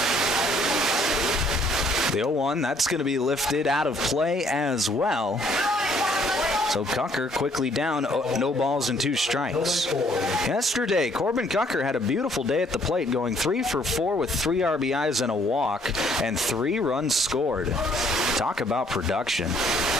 The 0-1, that's going to be lifted out of play as well. So Cucker quickly down, no balls and 2 strikes. Yesterday, Corbin Cucker had a beautiful day at the plate, going 3 for 4 with 3 RBIs and a walk, and 3 runs scored. Talk about production.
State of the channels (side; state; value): both; normal; correlation 0.64